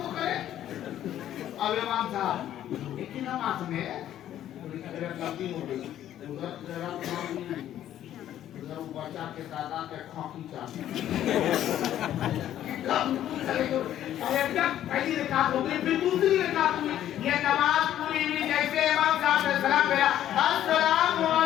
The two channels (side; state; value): right; quieter; 11.7 dB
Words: तो करे अब इमाम साहब एक ही नमाज में पूरी कैरस लंबी हो गई उधर कैरस उधर बच्चा के दादा के खोखी चाहते अरे क्या पहली रकात हो गई फिर दूसरी रकात हुई ये नमाज पूरी हुई जैसे इमाम साहब ने सलाम किया अस्सलामु